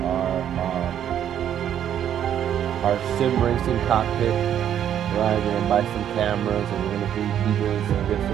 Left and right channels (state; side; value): quieter; left; 10.0 dB